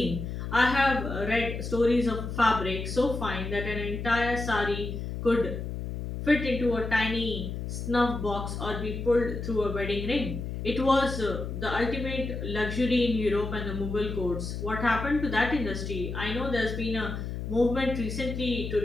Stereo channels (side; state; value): left; noise; hum, 5 dB below the sound